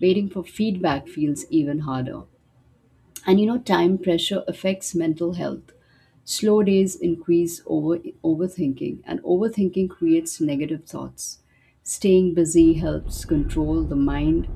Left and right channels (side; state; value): both; identical; correlation 1.00